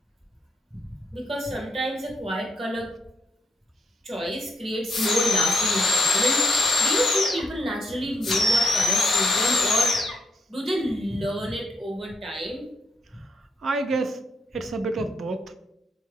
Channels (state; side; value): normal; both; correlation 0.74